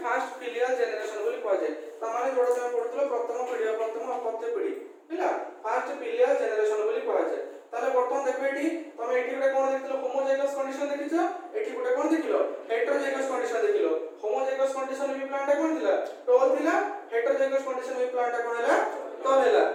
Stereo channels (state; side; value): identical; both; correlation 1.00